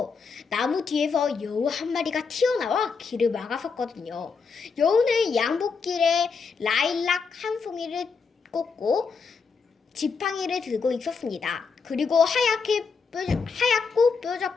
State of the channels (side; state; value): right; quieter; 5.2 dB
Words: 나무 뒤에서 여우 한 마리가 튀어나와 길을 막았었거든요. 여우는 양복길에 라일락 한 송이를 꽂고 지팡이를 들고 있었습니다. 그리고 하얗고